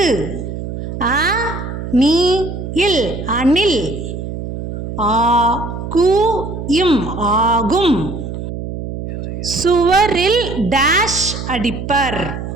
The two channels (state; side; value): noise; right; hum, 7 dB below the sound